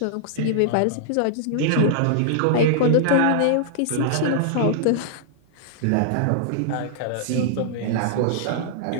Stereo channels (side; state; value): both; different; correlation -0.01